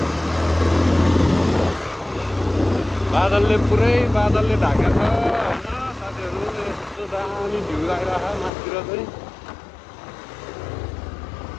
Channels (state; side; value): drops out; right; at 8.5 s